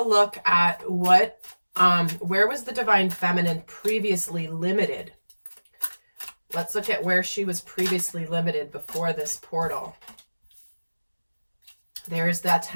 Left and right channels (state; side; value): inverted; both; correlation -1.00